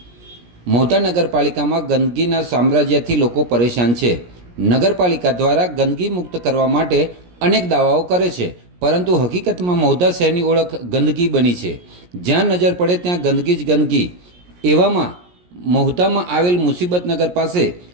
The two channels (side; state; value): left; late; 17 ms